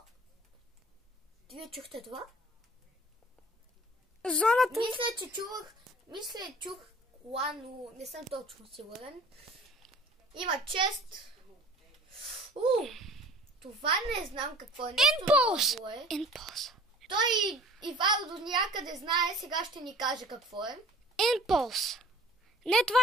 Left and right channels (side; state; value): both; normal; correlation 0.48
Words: вие чухте това? Зоната... чух кола, но не съм точно сигурен. Има чест. Това не знам какво е. Impulse. Той Ивайло до някъде знае, сега ще ни каже какво е. Impulse. Не, това